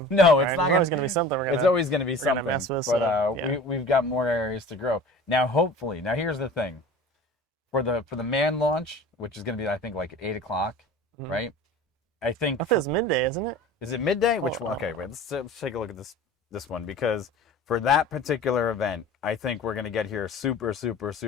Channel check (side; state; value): both; normal; correlation 0.40